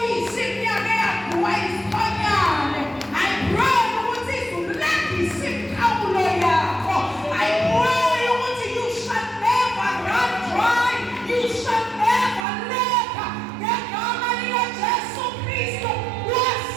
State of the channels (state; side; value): drops out; left; at 12.5 s